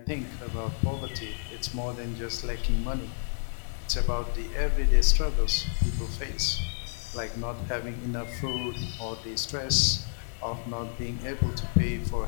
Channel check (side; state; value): right; silent; digital silence